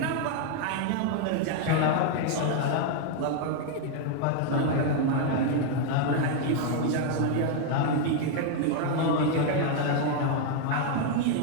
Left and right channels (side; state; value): both; different; correlation 0.00